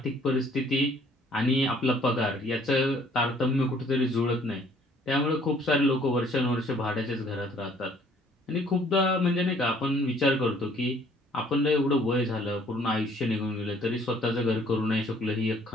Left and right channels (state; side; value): normal; both; correlation 0.59